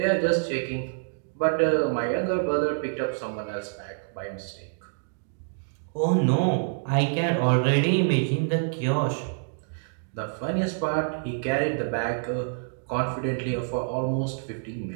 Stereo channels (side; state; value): left; silent; digital silence